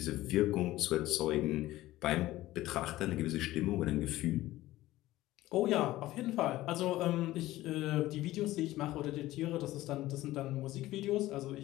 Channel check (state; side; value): quieter; right; 16.4 dB